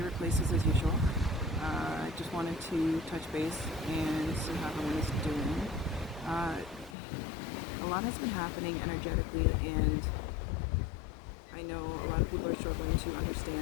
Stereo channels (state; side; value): drops out; right; at 7.0 s